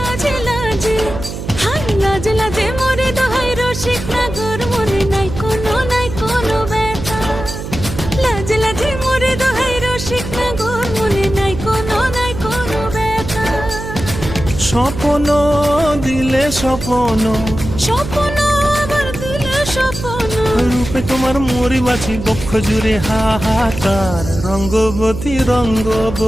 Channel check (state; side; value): noise; right; hum, 8 dB below the sound